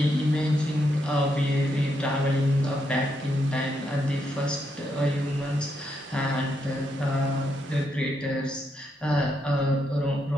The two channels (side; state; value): both; normal; correlation 0.79